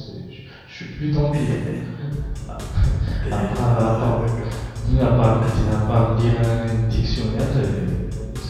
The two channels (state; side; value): identical; both; correlation 1.00